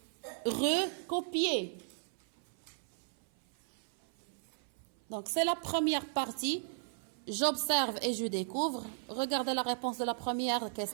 recopier. Donc, c'est la première partie. J'observe et je découvre. Regardez la réponse de la première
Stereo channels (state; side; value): silent; left; 54 dB below the other